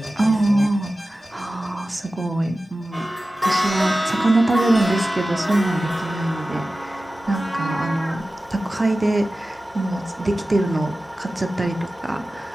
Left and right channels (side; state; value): both; normal; correlation 0.95